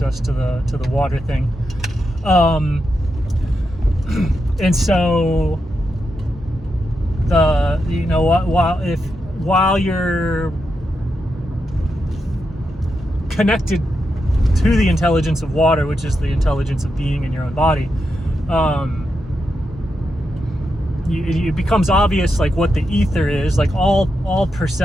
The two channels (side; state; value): both; normal; correlation 0.86